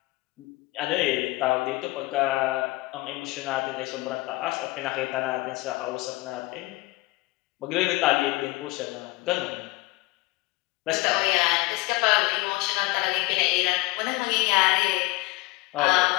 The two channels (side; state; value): right; quieter; 21.8 dB